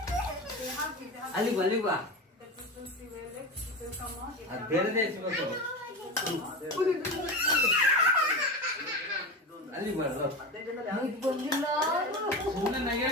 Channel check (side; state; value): both; normal; correlation 0.24